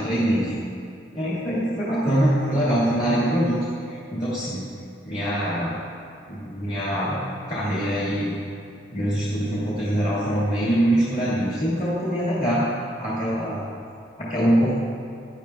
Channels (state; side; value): normal; both; correlation 0.73